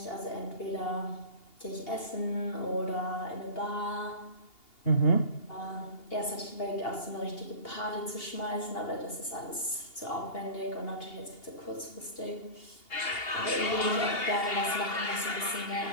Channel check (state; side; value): late; right; 2.8 ms